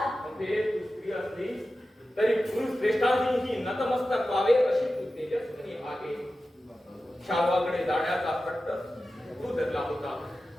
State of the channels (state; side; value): normal; both; correlation 0.93